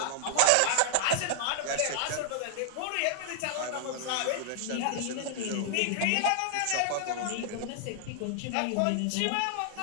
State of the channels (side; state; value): both; different; correlation 0.00